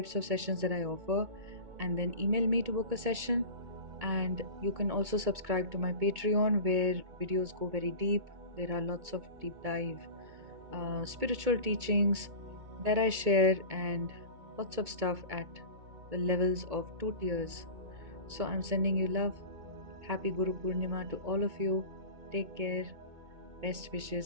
of sessions that I offer, and then email me to book a session. And you can also subscribe to my Patreon, where videos go very deep. There are lots of deep dive spiritual teachings that I share, and lots of stuff at the levels of 2 tiers. So I'm sending you love. Happy Guru Purnima to all of you. Take care. Best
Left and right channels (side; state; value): left; late; 2.2 ms